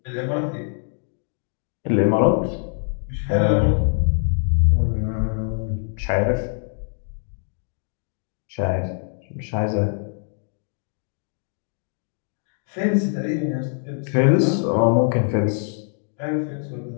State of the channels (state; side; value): silent; right; 61 dB below the other